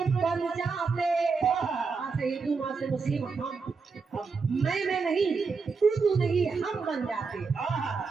बन जाते, हाँ से हिंदू, माँ से मुस्लिम, हम मैं नहीं, तू नहीं, हम बन जाते।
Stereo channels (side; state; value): left; quieter; 4.8 dB